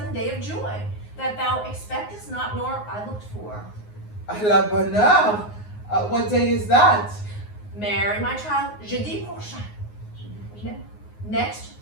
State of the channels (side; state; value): right; late; 9.6 ms